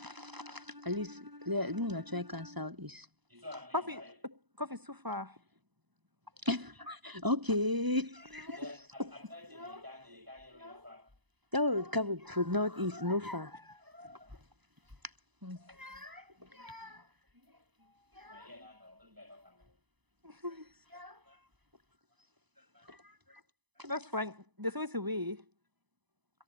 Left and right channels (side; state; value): left; late; 1.0 ms